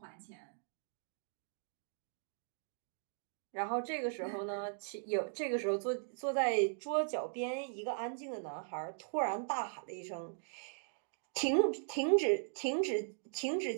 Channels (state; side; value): silent; left; digital silence